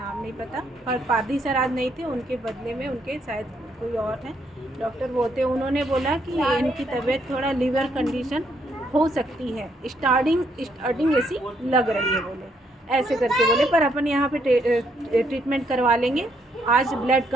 नहीं पता, और पादी सर आज नहीं थे, उनके बदले में उनके शायद कोई और हैं डॉक्टर वो थे। उन्होंने बोला कि इनकी तबीयत थोड़ा लीवर कंडीशन हो सकती है, स्टार्टिंग ऐसी लग रही है बोले, ऐसे करके बोले, पर अपन यहाँ पे ट्रीटमेंट करवा लेंगे। आज ब्लड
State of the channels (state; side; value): normal; both; correlation 0.73